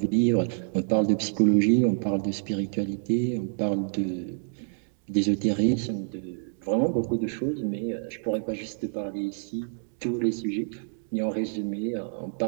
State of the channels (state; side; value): silent; left; digital silence